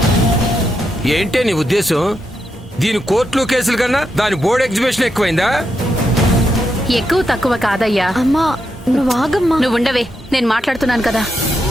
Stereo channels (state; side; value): normal; both; correlation 0.83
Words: ఏంటే నీ ఉద్దేశం? దీని కోర్టులు కేసులు కన్నా దాని బోర్డు ఎగ్జిబిషన్ ఎక్కువైందా? ఎక్కువ తక్కువ కాదయ్యా. అమ్మా నువ్వు ఆగమ్మా. నువ్వు ఉండవే, నేను మాట్లాడుతున్నాను కదా.